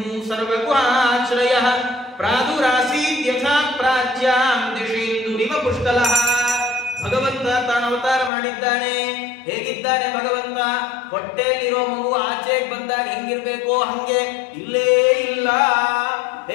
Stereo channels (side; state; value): right; drops out; at 8.3 s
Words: ಸರ್ವಗುಹಾಶ್ರಯ ಪ್ರಾದುರಾಸೀತ್ ಯಥಾ ಪ್ರಾಚ್ಯಾಂ ದಿಶೇಂದುರಿವ ಪುಷ್ಕಲಃ. ಭಗವಂತ ತಾನು ಅವತಾರ ಮಾಡಿದ್ದಾನೆ. ಹೇಗಿದ್ದಾನೆ ಭಗವಂತ? ಹೊಟ್ಟೆಯಲ್ಲಿರೋ ಮಗು ಆಚೆಗೆ ಬಂದಾಗ ಹೆಂಗಿರ್ಬೇಕೋ ಹಂಗೆ ಇಲ್ಲೇ ಇಲ್ಲ.